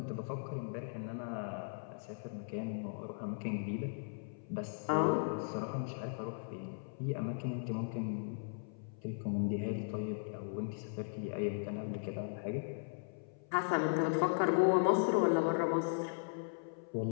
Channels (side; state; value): right; silent; 53 dB below the other